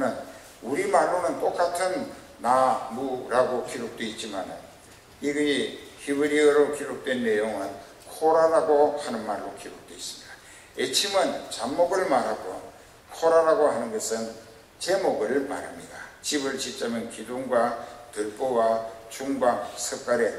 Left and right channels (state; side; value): identical; both; correlation 1.00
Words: 우리말로는 똑같은 나무라고 기록되어 있지만 이게 히브리어로 기록된 내용은 코라라고 하는 말로 기록되어 있습니다. 에침은 잡목을 말하고 코라라고 하는 것은 제목을 말합니다. 집을 짓자면 기둥과 들보와 중방, 석가래